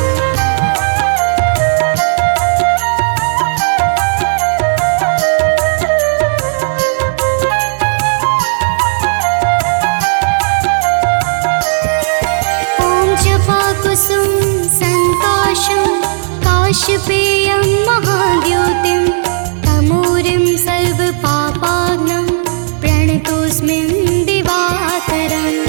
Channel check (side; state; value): left; silent; digital silence